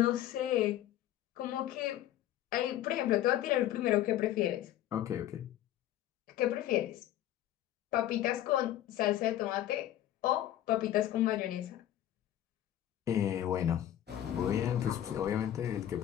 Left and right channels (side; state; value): right; quieter; 12.5 dB